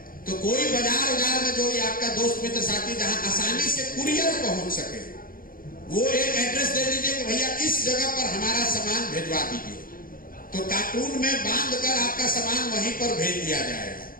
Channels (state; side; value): late; right; 0.41 ms